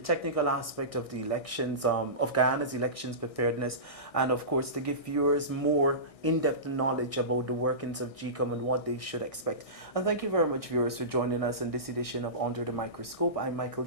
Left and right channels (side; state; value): right; late; 1.6 ms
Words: aspect of the elections, of Guyana's elections preparedness, and of course to give viewers more in-depth knowledge about the workings of GECOM and what they should expect. And thank you very much, viewers, for joining us in this edition of Under the Microscope. I'm Michael